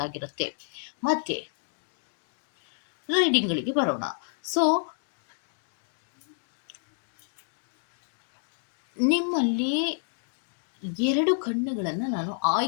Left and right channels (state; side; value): silent; right; 58 dB below the other